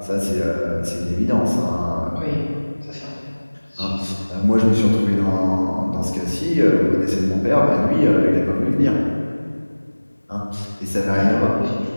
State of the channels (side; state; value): both; inverted; correlation -1.00